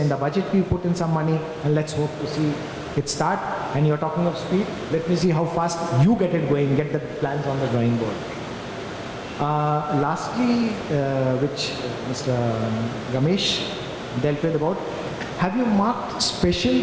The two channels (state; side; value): identical; both; correlation 1.00